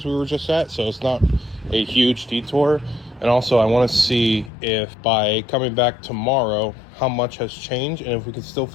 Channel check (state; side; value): drops out; right; at 4.5 s